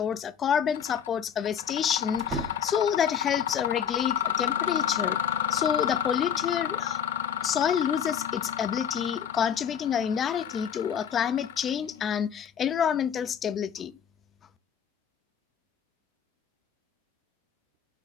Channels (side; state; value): right; quieter; 8.3 dB